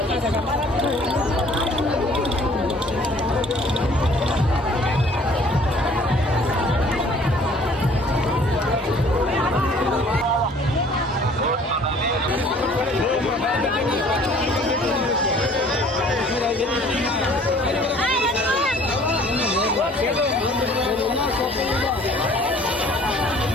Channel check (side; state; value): both; normal; correlation 0.54